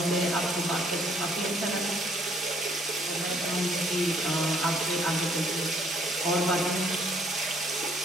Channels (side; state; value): both; normal; correlation 0.64